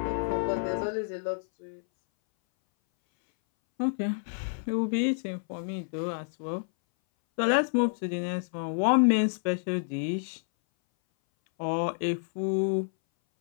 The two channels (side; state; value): right; silent; 59 dB below the other